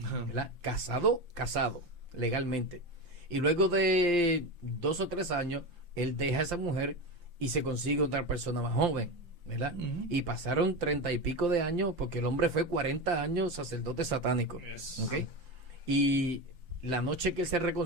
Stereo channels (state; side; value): late; left; 5.8 ms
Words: ¿verdad? Casado, legalmente. Y luego de 2 o 3 años, él deja a esa mujer y se consigue otra persona más joven, ¿verdad? Y pasaron 30 y pico de años, porque el hombre fue 40 años sacerdote satánico, ¿ok? Y la noche que él se